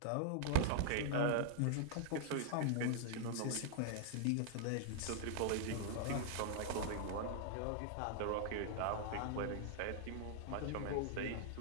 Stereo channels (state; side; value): different; both; correlation 0.00